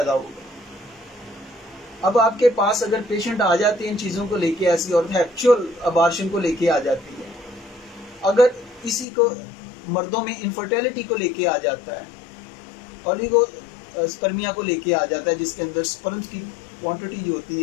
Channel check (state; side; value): drops out; right; at 9.1 s